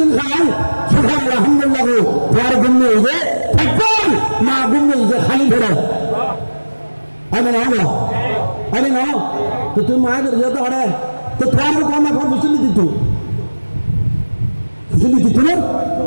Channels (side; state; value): both; inverted; correlation -1.00